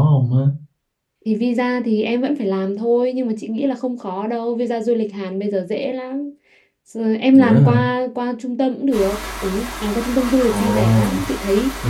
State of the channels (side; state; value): both; identical; correlation 1.00